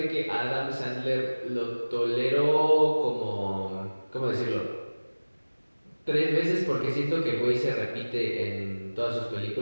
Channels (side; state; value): both; inverted; correlation -1.00